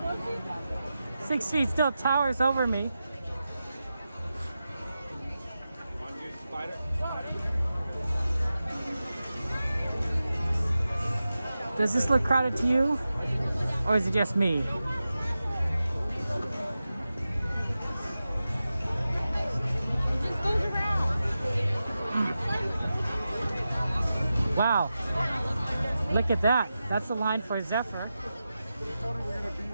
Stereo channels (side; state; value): both; inverted; correlation -0.92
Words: 6 feet still towers over me. Does this look crowded to you? Or is it just me? Wow. Look at that. That's the line for Zephyr.